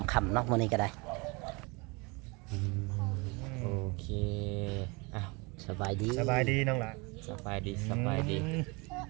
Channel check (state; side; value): quieter; left; 28.0 dB